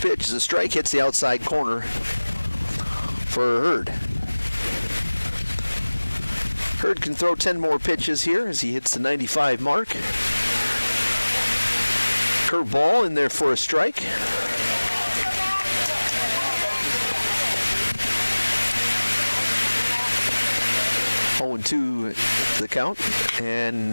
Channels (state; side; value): inverted; both; correlation -1.00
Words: pitch is a strike, hits the outside corner for Hurd. Hurd can throw 10 more pitches here as he hits the 95 mark. Curveball in there for a strike. Oh, and 2 the count.